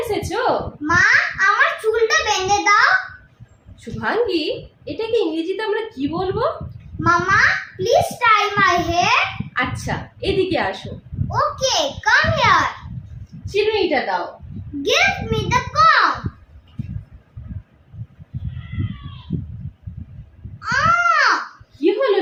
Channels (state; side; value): identical; both; correlation 1.00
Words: এসেছো? মা, আমার চুলটা বেঁধে দাও। শুভাঙ্গী, এটাকে ইংরেজিতে আমরা কি বলবো? Mama, please tie my hair. আচ্ছা, এদিকে আসো। Okay, come here. চিরুনিটা দাও। Give me the comb. কি হলো